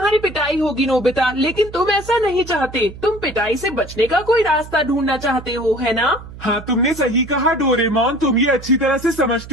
पिटाई होगी नोबिता, लेकिन तुम ऐसा नहीं चाहते। तुम पिटाई से बचने का कोई रास्ता ढूंढना चाहते हो, है ना? हाँ, तुमने सही कहा डोरेमोन। तुम ये अच्छी तरह से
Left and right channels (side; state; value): right; noise; hum, 15 dB below the sound